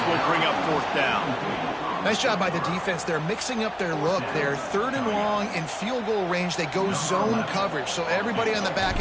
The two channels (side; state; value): both; identical; correlation 1.00